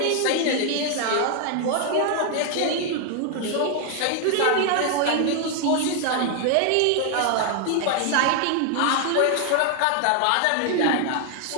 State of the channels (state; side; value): different; both; correlation 0.00